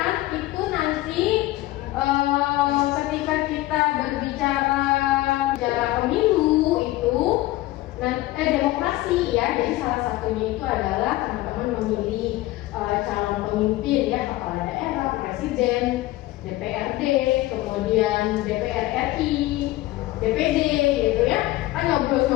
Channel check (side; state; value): right; quieter; 17.3 dB